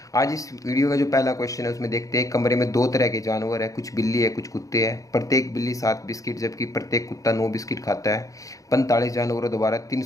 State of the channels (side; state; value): right; late; 0.16 ms